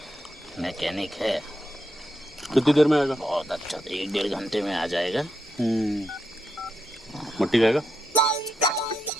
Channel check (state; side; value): normal; both; correlation 0.83